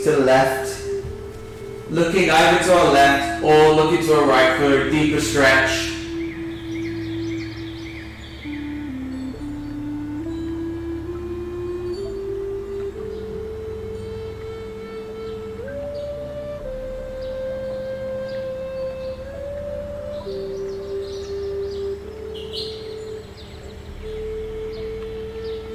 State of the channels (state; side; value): identical; both; correlation 1.00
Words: to the left, looking either to our left or looking to our right for a deeper stretch.